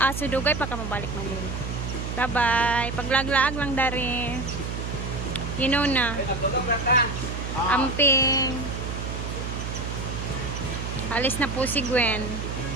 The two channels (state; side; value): noise; right; hum, 5 dB below the sound